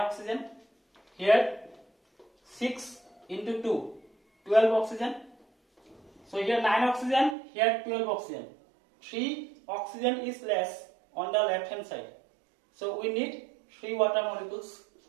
Here 6 into 2, 12 oxygen. So here 9 oxygen, here 12 oxygen. 3 oxygen is less on the left hand side. So we need 3 water molecules.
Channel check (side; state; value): left; drops out; at 7.4 s